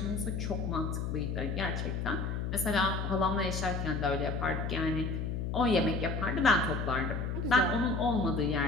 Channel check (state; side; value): noise; left; hum, 2 dB below the sound